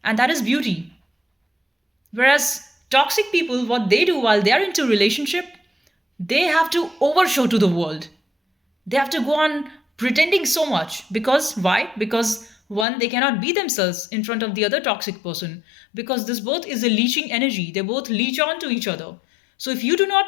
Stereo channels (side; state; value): right; drops out; at 12.9 s